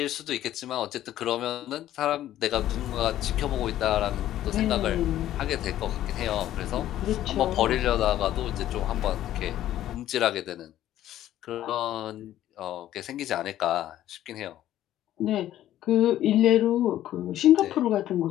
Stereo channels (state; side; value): quieter; right; 12.8 dB